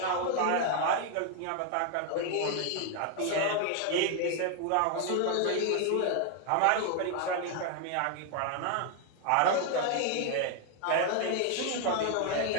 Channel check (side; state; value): both; different; correlation 0.00